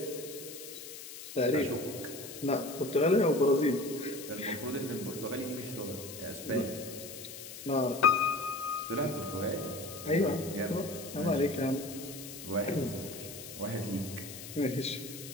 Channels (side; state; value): left; noise; hiss, 12 dB below the sound